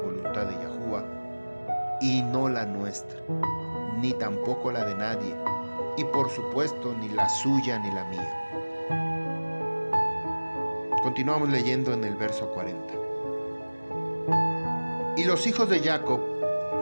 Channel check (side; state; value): both; inverted; correlation -1.00